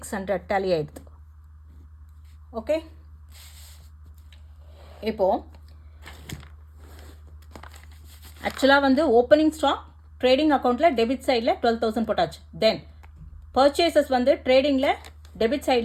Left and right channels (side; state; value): both; identical; correlation 1.00